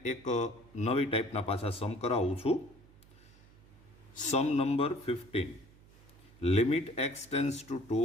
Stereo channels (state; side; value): noise; right; hum, 25 dB below the sound